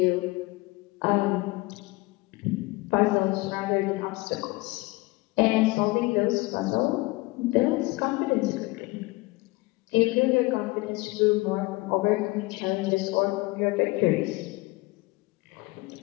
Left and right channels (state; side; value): quieter; right; 23.0 dB